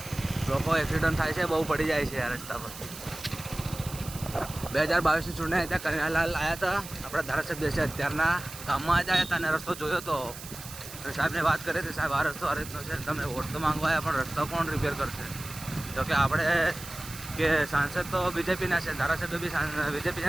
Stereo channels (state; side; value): noise; right; hiss, 13 dB below the sound